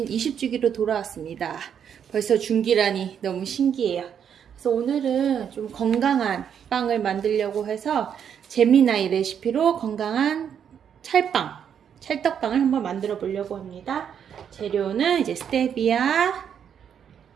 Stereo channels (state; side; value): quieter; left; 8.2 dB